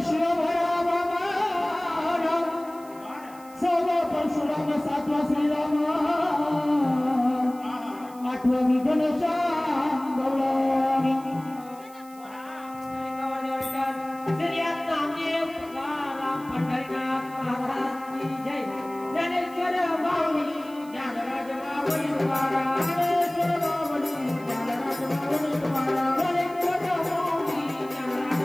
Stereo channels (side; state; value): right; noise; hiss, 23 dB below the sound